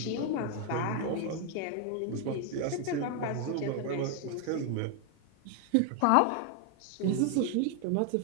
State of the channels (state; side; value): different; both; correlation 0.01